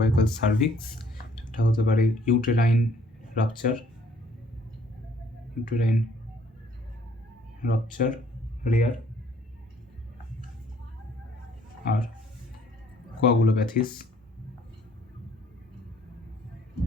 সার্ভিক্স, এটা হতে পারে ইউটেরাইন রাপচার, রেয়ার, আর কোয়াগুলোপ্যাথিস।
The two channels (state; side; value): normal; both; correlation 0.61